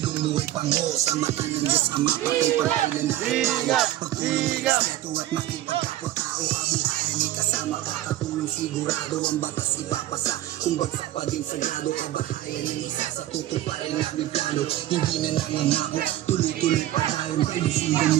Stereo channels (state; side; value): quieter; left; 14.0 dB